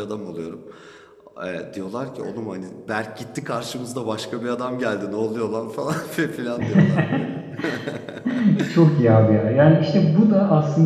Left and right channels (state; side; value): identical; both; correlation 1.00